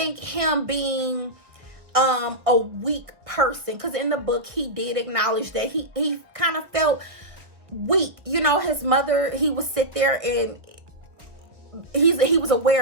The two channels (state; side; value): late; left; 1.4 ms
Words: him being a weak person, because in the book he did acknowledge that he kind of felt weak. You know, his mother, he would sit there and he was